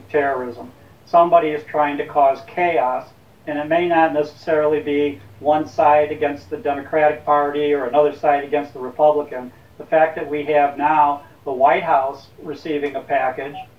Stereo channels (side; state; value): both; identical; correlation 1.00